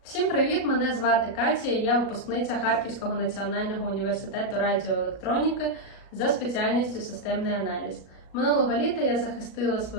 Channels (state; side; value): late; right; 37 ms